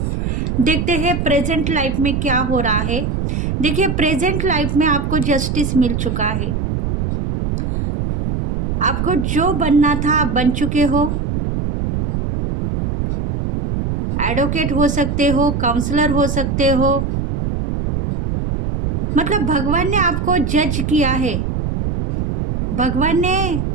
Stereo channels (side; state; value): right; noise; rumble, 2 dB below the sound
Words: देखते हैं प्रेजेंट लाइफ में क्या हो रहा है। देखिए, प्रेजेंट लाइफ में आपको जस्टिस मिल चुका है। आपको जो बनना था आप बन चुके हो। एडवोकेट हो सकते हो, काउंसलर हो सकते हो, मतलब भगवान ने आपको जज किया है, भगवान ने